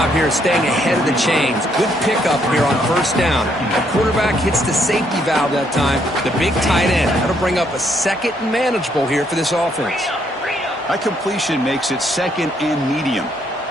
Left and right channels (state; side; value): normal; both; correlation 0.72